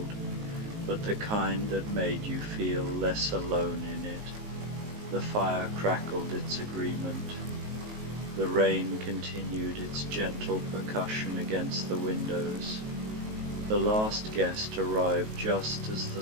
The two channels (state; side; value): late; left; 19 ms